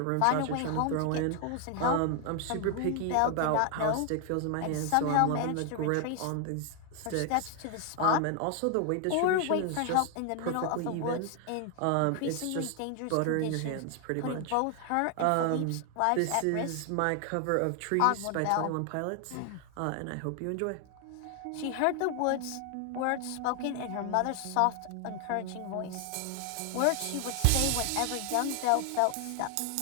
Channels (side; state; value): both; different; correlation 0.00